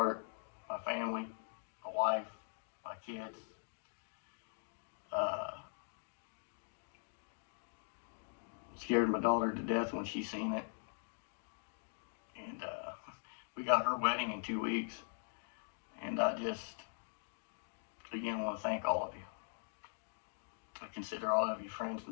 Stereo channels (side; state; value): right; silent; digital silence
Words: my family, my wife, my kids. Scared my daughter to death when she seen it. And we got her wedding in 2 weeks. And I just, again, want to thank all of you. I consider all of you friends